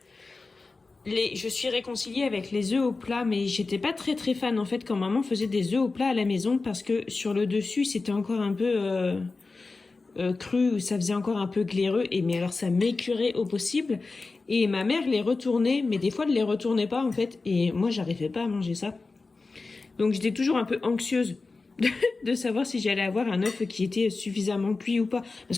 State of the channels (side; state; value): right; quieter; 3.8 dB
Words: Je suis réconciliée avec les œufs au plat, mais j'étais pas très fan en fait quand maman faisait des œufs au plat à la maison parce que sur le dessus c'était encore un peu cru, ça faisait encore un peu glaireux, mais alors ça m'écurait au possible. Et ma mère les retournait, mais des fois elle les retournait pas en fait, et moi j'arrivais pas à manger ça. Donc j'étais toujours un peu anxieuse de savoir si j'allais avoir un œuf qui était suffisamment cuit ou pas.